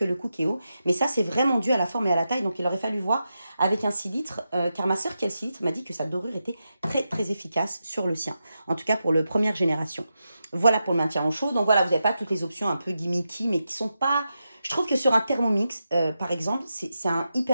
le Cookéo. Mais ça, c'est vraiment dû à la forme et à la taille. Donc, il aurait fallu voir avec un 6 litres, car ma sœur qui a le 6 litres m'a dit que sa dorure était très, très efficace sur le sien. En tout cas, pour le première génération. Voilà pour le maintien en chaud. Donc, voilà, vous n'avez pas toutes les options un peu gimmicky, mais qui sont pas... Je trouve que sur un Thermomix, par exemple, c'est un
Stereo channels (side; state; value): both; inverted; correlation -0.88